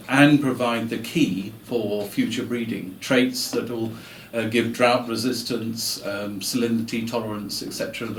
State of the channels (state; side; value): identical; both; correlation 1.00